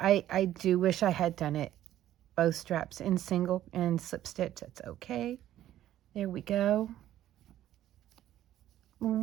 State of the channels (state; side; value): quieter; left; 12.6 dB